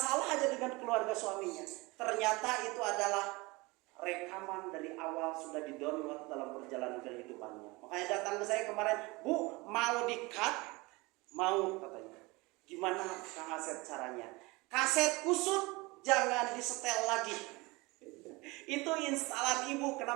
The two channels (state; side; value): quieter; left; 24.0 dB